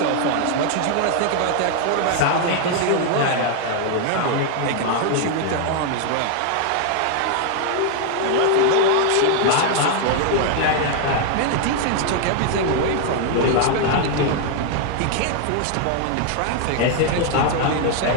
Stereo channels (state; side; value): different; both; correlation 0.00